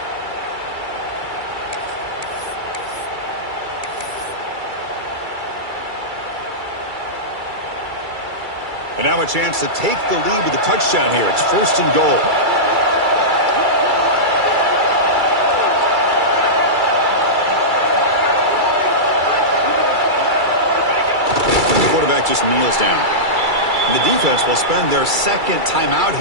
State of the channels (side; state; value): left; late; 2.3 ms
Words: And now a chance to take the lead with a touchdown here. It's 1st and goal. And the quarterback just kneels down. And the defense will spend their 2nd timeout